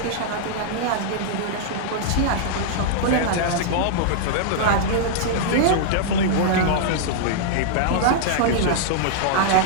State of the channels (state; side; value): different; both; correlation -0.01